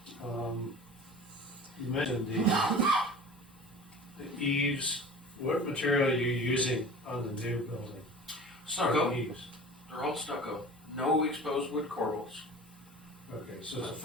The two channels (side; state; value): both; normal; correlation 0.39